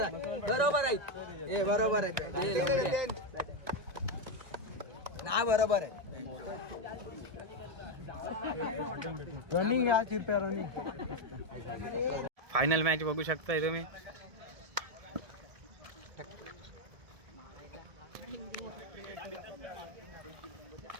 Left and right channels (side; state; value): left; late; 1.9 ms